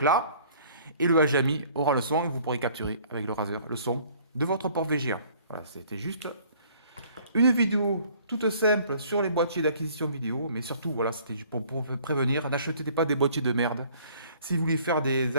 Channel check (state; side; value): inverted; both; correlation -0.56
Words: là, et le HDMI aura le son, et vous pourrez capturer avec le raser le son de votre port VGA. Voilà, c'était juste une vidéo toute simple sur les boîtiers d'acquisition vidéo, mais surtout, voilà, c'était pour prévenir, n'achetez pas des boîtiers de merde. Si vous voulez faire des